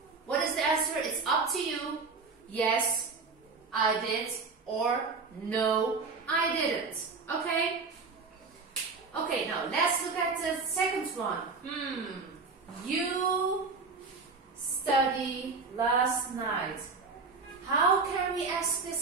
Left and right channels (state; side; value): quieter; left; 4.4 dB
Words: What is the answer? It's up to you. Yes, I did. Or no, I didn't. Okay? Okay, now let's look at the second one. You studied last night. How can we ask